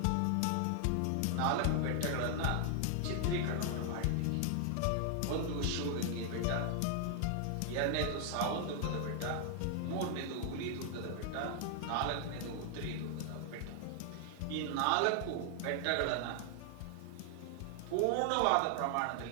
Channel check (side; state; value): both; different; correlation 0.00